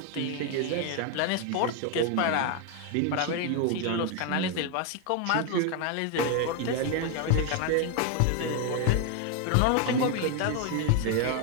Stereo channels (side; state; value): both; different; correlation 0.01